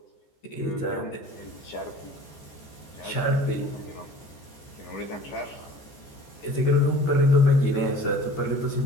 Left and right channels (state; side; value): late; right; 14 ms